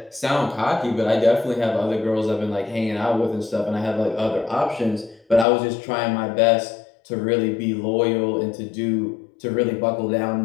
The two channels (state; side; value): drops out; right; at 5.5 s